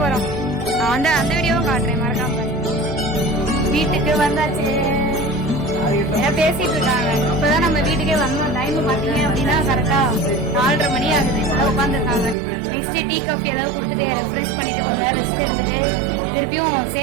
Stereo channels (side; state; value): left; drops out; at 12.4 s